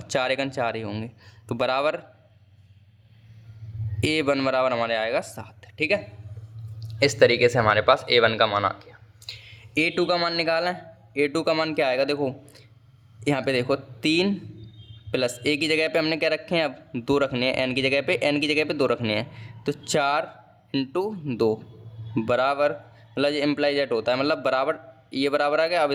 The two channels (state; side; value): identical; both; correlation 1.00